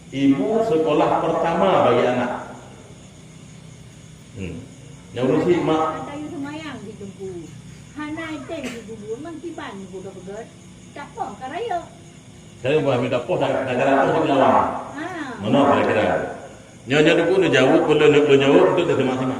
Ibu sekolah pertama bagi anak. Yang urusi mak. Ada yang semayang di tempu. Hana iten di bubur mangkiban budak-budak. Tak apa karaya. Saya buat minta poh dah negara poh di lawan. Mana kira-kira? Nyonya dulu nu jauh, perlu jauh untuk terima-terima.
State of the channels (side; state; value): both; identical; correlation 1.00